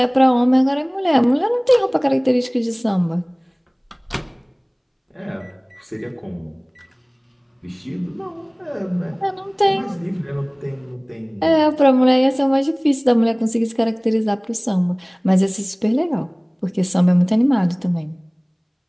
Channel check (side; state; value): both; identical; correlation 1.00